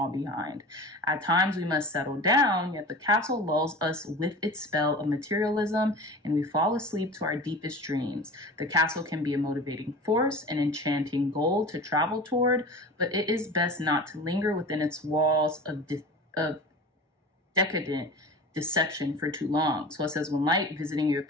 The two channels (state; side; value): normal; both; correlation 0.35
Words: behind. At times, we must settle down, yet the castle lulls us with its spell of materialism, and we fall asleep to our deepest dreams. The castle can be a motivating force, an enchanting goal to travel toward, but it is best not to linger within its walls of decadent deception for too long. So it says, when light visiting your